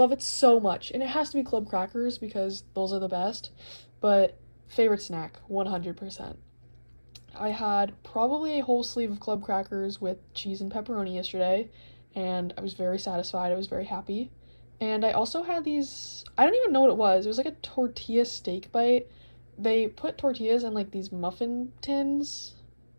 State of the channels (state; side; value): inverted; both; correlation -1.00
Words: it so much. And it has to be club crackers because those are the best. But favorite snack, 100%. I had probably a whole sleeve of club crackers with cheese and pepperoni yesterday, and I was very satisfied. I was very happy. And I also had these, I don't even know what it was. It was like a tortilla steak bite. They put tortillas in these muffin tins